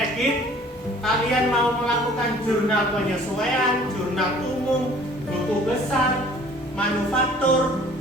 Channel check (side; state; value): both; normal; correlation 0.52